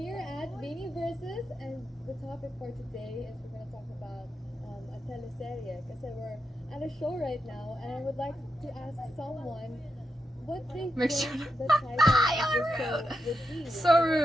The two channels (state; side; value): normal; both; correlation 0.86